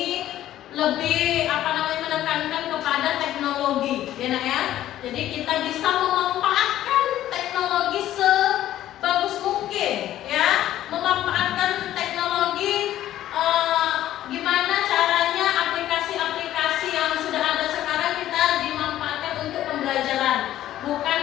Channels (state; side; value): quieter; right; 13.0 dB